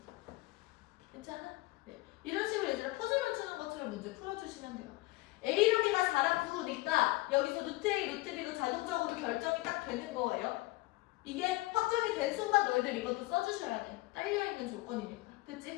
괜찮아? 네. 이런 식으로 얘들아 퍼즐 맞추는 것처럼 문제 풀어주시면 돼요. A랑 B가 4랑 9니까 여기서 루트 A, 루트 B도 자동적으로 결정이 딱 되는 거예요. 이게 확정이 된 순간 너희들 이것도 써주셔야 돼. 딸려있는 조건이니까.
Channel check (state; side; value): quieter; right; 20.1 dB